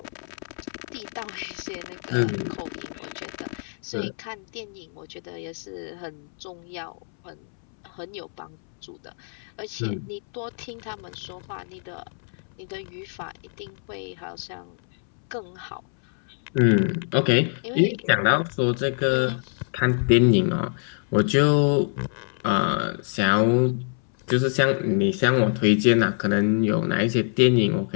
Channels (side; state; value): right; silent; 62 dB below the other